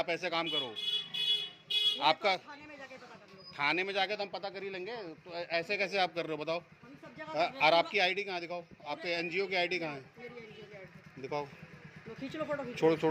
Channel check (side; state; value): both; identical; correlation 1.00